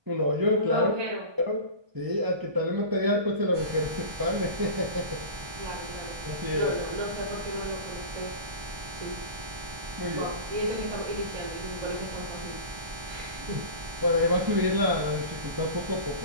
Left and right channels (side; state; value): left; late; 1.2 ms